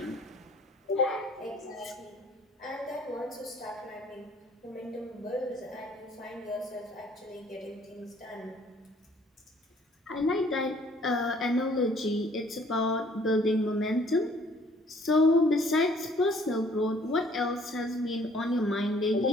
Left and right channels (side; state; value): both; normal; correlation 0.58